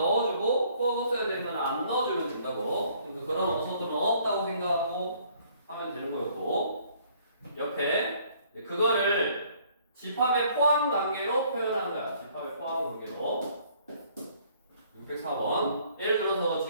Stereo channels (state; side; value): inverted; both; correlation -0.61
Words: 꼭 없어야 되는 거는 안 넣어주면 된다고. 그러니까 그런 원소들은 없다고 생각하고 하면 되는 거였고, 옆에 그거를 집합의 포함 관계로 표현하는 거야. 집합의 포함 관계로. 604번. 예를 들어서